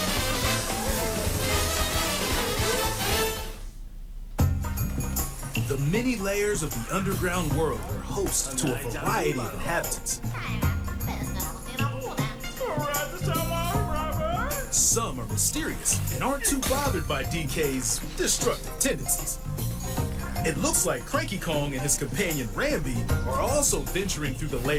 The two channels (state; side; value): identical; both; correlation 1.00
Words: The many layers of the underground world are host to a variety of inhabitants. Some are mysterious and aren't too bothered by DK's destructive tendencies. It looks like Cranky Kong and his companion Rambi are also venturing through the